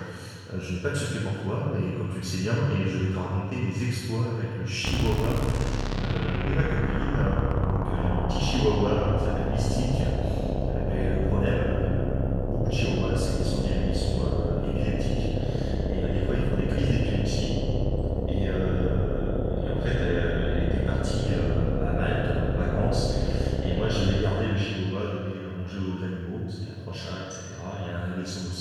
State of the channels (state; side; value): identical; both; correlation 1.00